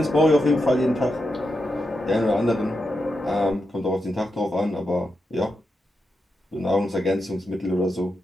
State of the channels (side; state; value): both; normal; correlation 0.86